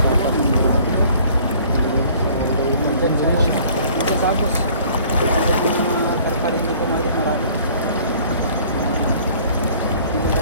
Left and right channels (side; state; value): both; inverted; correlation -0.54